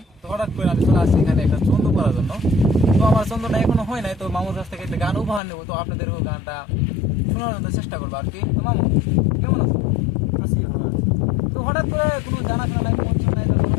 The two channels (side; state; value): right; drops out; at 5.4 s